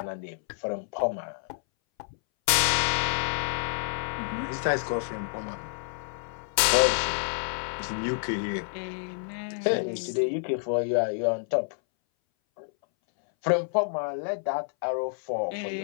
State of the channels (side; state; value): right; silent; 59 dB below the other